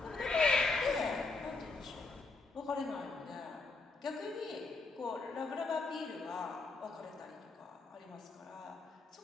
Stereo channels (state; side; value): quieter; right; 3.7 dB